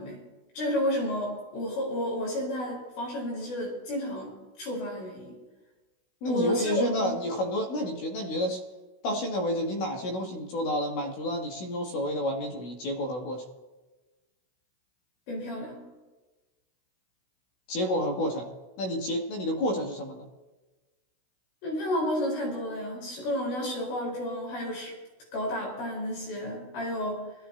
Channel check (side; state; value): right; late; 16 ms